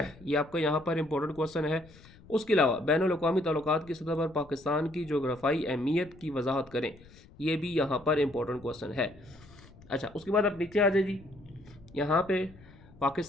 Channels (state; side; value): noise; left; rumble, 23 dB below the sound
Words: आपका यहाँ पर इंपॉर्टेंट क्वेश्चन है। उसके अलावा बैनुल अक़वामी ताल्लुकात की सतह पर पाकिस्तान की जोग्राफ़ाई अहमियत की वजाहत करें, ये भी यहाँ पर इंपॉर्टेंट क्वेश्चन है। अच्छा, उसके बाद आप नीचे आ जाए जी, यहाँ पे